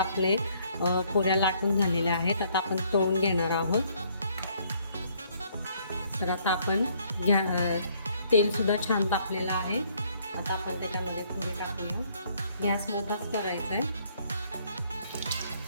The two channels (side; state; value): both; inverted; correlation -0.65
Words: पुऱ्या लाटून झालेल्या आहेत. आता आपण तळून घेणार आहोत. तर आता आपण तेल सुद्धा छान तापलेलं आहे. आता आपण त्याच्यामध्ये पुरी टाकूया. गॅस मोठाच करायचा आहे.